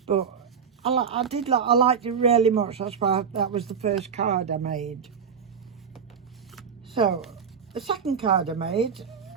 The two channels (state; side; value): quieter; left; 6.7 dB